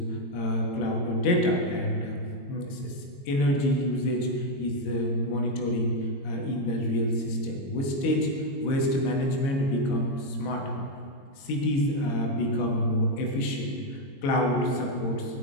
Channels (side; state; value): right; late; 22 ms